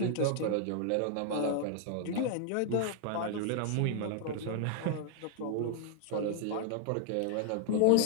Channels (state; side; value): different; both; correlation -0.01